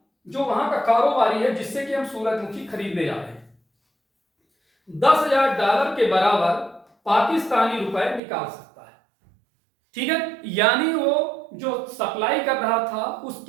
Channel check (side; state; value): left; drops out; at 8.2 s